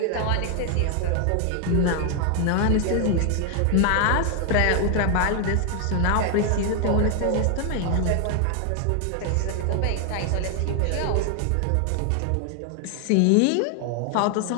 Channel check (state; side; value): different; both; correlation 0.00